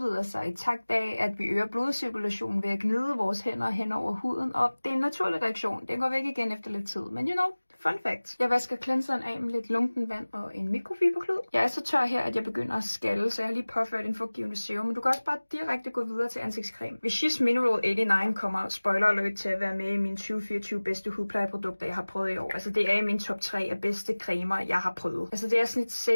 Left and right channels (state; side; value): inverted; both; correlation -1.00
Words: sig i takt af, at vi øger blodcirkulationen ved at gnide vores hænder hen over huden, og det er en naturlig reaktion. Den går væk igen efter lidt tid, men you know, fun fact. Jeg vasker cleanseren af med lidt lunken vand og en mikrofiberklud. Jeg er så tør her, at jeg begynder at skalle, så jeg har lige påført en fugtgivende serum, men du kan også bare direkte gå videre til ansigtscreme. Vichy's Mineral 89 kommer, spoiler alert, til at være med i mine 2024 bedste hudplejeprodukter, jeg har prøvet i år. Altså det er i min top 3 af bedste cremer, jeg har prøvet. Altså det er sådan et